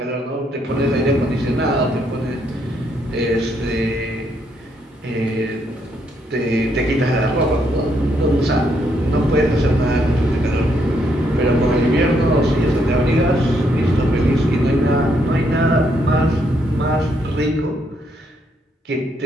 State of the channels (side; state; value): both; normal; correlation 0.74